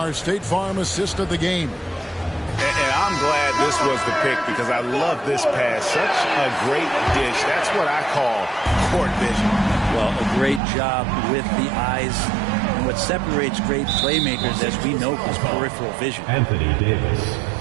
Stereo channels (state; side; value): drops out; left; at 10.6 s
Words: State Farm assist of the game. And I'm glad this was the pick because I love this pass. Such a great dish. That's what I call court vision. Well, a great job with the eyes. And what separates great playmakers, as we know, is peripheral vision. Anthony Davis.